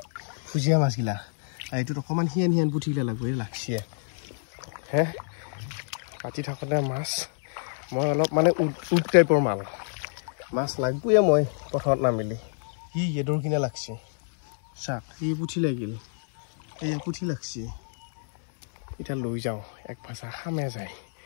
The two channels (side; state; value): right; silent; 60 dB below the other